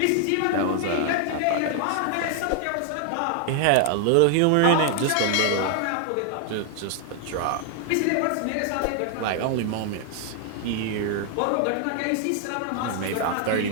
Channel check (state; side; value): different; both; correlation 0.00